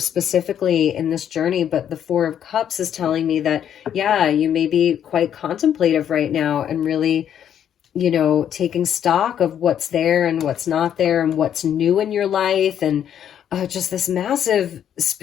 in this journey, but the Four of Cups is telling me that, yeah, you may be quite contemplative right now and really, taking stock of what's there and what's not there and what's new in your life, and just this massive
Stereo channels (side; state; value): right; quieter; 9.5 dB